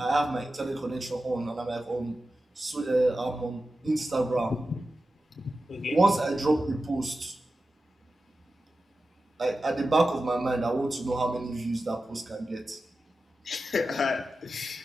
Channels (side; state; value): both; normal; correlation 0.93